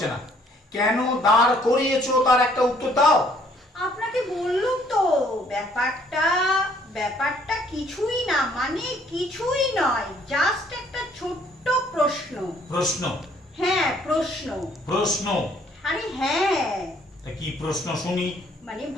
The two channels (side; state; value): both; normal; correlation 0.63